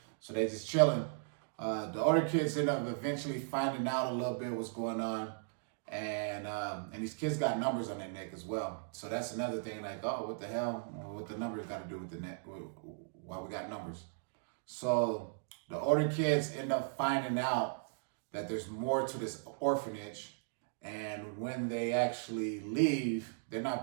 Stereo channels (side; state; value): left; silent; digital silence